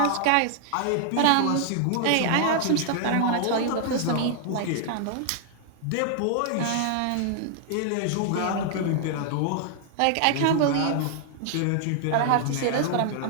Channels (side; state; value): both; different; correlation -0.01